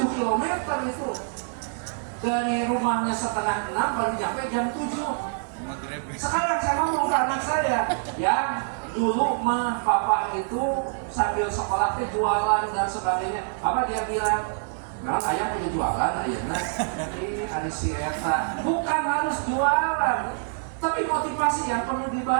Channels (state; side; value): silent; left; 55 dB below the other